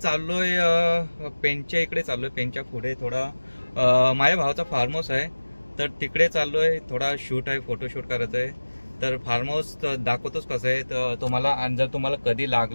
पेनच्या इकडे चाललोय। पेनच्या पुढे थोडा माझ्या भावाचा फार्म हाऊस आहे, तर तिकडे चाललोय। थोडा शूट आहे, फोटोशूट करायचं आहे। तर फार्म हाऊस दाखवतोच कसं आहे। तर तुम्हाला जर तुम्हाला कधी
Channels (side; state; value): both; inverted; correlation -1.00